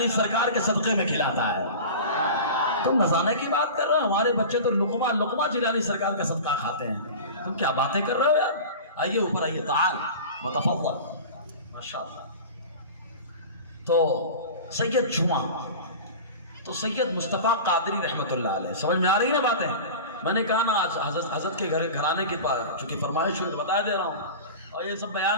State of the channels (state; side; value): inverted; both; correlation -0.33